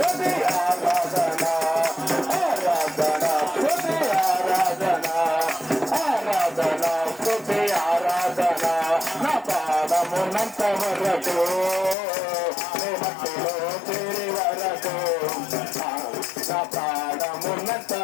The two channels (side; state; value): right; drops out; at 12.0 s